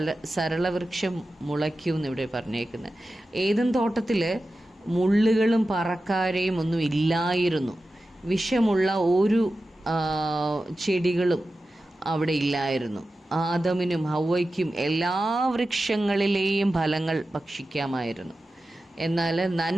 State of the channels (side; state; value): both; normal; correlation 0.93